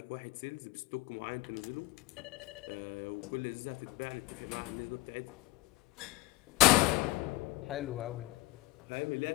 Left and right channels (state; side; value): quieter; right; 21.6 dB